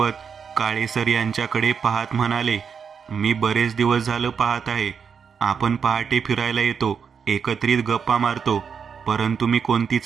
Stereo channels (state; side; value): quieter; left; 6.6 dB